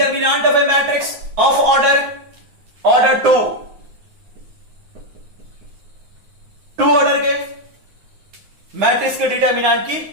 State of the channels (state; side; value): late; left; 9.6 ms